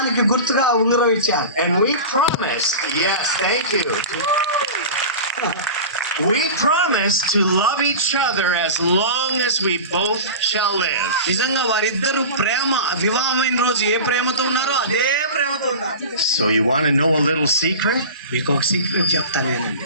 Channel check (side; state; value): both; inverted; correlation -0.31